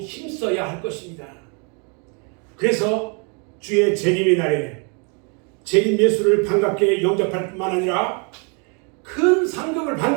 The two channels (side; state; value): left; quieter; 35.9 dB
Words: 힘써야 할 것입니다. 그래서 주의 재림의 날에 재림 예수를 반갑게 영접할 뿐만 아니라 큰 상급을